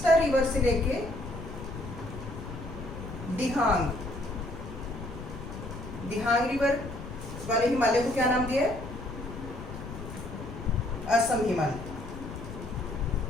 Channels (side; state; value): left; noise; rumble, 10 dB below the sound